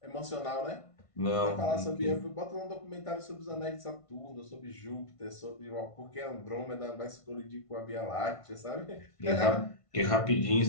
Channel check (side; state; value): right; late; 1.5 ms